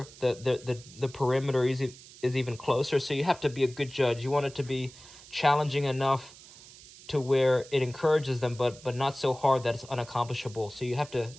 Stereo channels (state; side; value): noise; right; hiss, 20 dB below the sound